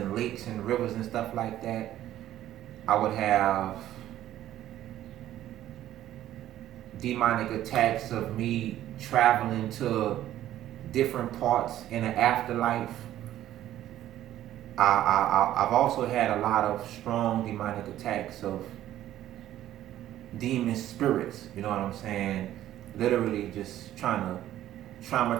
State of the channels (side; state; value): left; quieter; 12.9 dB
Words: lakes and rivers and stuff like that. I would have demonic attacks of me traveling to different parts in the afterlife. I've also had a lot of strong demonic attacks of demon spirits, you know what I'm saying? Literally just trying to